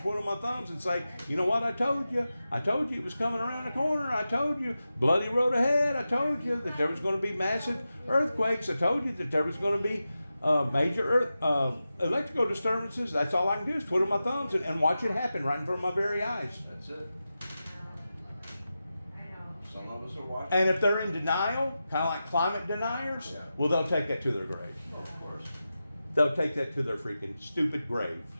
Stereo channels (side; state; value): both; inverted; correlation -0.92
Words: twiddle my thumbs and say, you know what, I told you it was coming around the corner. I told you, bloody road ahead. I told you that there was going to be massive earthquakes. I told you that there was going to be major electrical disturbances. That's all I can do is twiddle my thumbs and watch it happen right in front of my very eyes. That's it. Some of us are watching. And if they're in denial, kind of like climate deniers, Yeah. well, they'll take that to their grave. Well, of course. They'll take that to their freaking stupid grave.